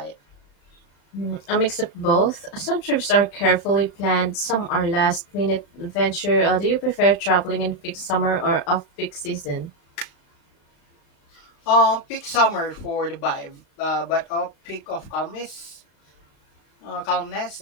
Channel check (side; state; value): right; late; 35 ms